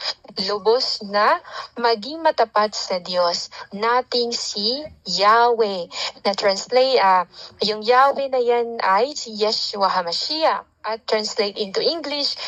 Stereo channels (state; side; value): identical; both; correlation 1.00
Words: Lubos na maging matapat sa Diyos nating si Yahweh. Na translate, yung Yahweh na yan ay si Yeshua HaMashiach. At translate into English,